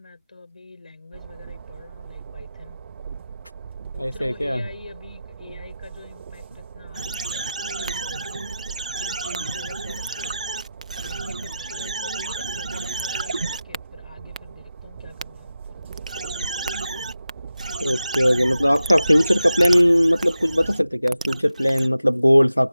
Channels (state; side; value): inverted; both; correlation -0.92